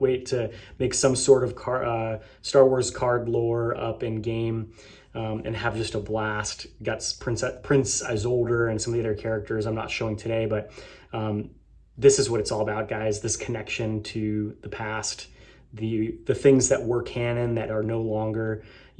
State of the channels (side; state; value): both; identical; correlation 1.00